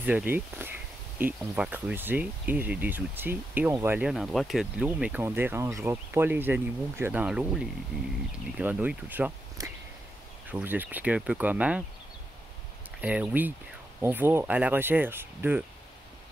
Et on va creuser, et j'ai des outils, et on va aller à un endroit qui a de l'eau, mais qu'on ne dérangera pas les animaux qu'il y a dans l'eau, les grenouilles, tout ça. Je vais vous expliquer un peu comment. Oui, on va à la recherche de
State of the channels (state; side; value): normal; both; correlation 0.85